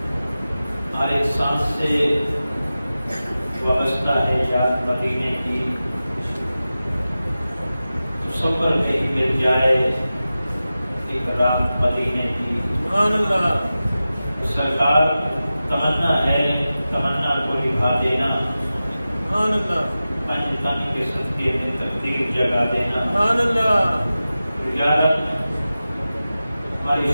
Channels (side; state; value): both; inverted; correlation -0.94